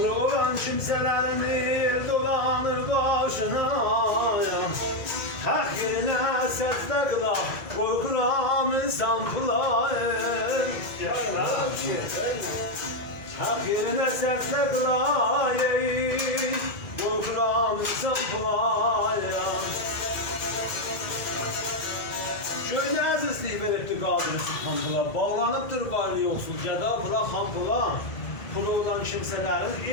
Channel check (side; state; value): right; late; 2.9 ms